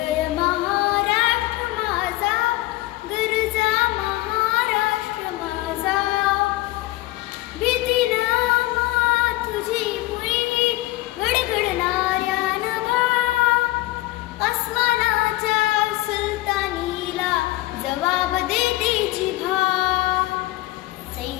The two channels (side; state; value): right; quieter; 18.4 dB